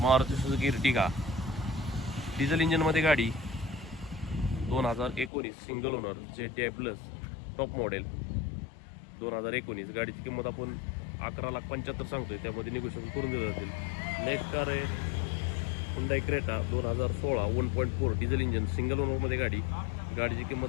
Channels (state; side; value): drops out; right; at 5.3 s